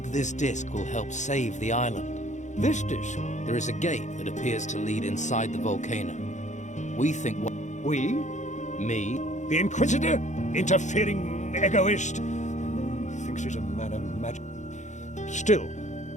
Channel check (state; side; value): late; right; 0.35 ms